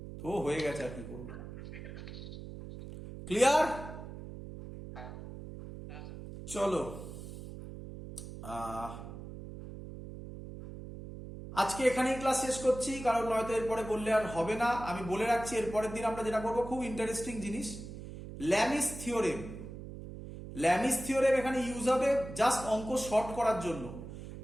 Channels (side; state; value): right; noise; hum, 11 dB below the sound